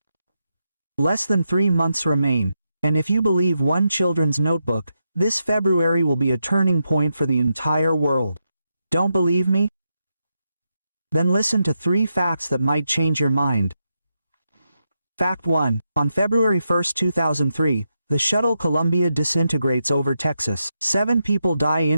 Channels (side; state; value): both; inverted; correlation -0.85